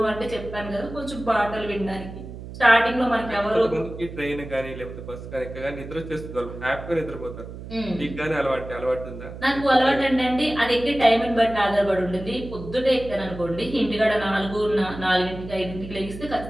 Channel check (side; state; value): right; noise; hum, 12 dB below the sound